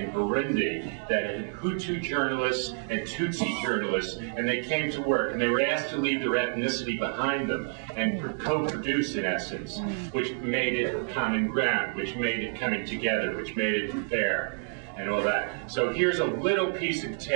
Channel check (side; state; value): left; silent; 59 dB below the other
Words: Burundi that had Hutu journalists and Tutsi journalists, and they came to work, and they were asked to leave their ethnicity behind them and co-produce, in essence, which made it common ground, which made it coming together, which made it fair, and all that. So here's a little piece of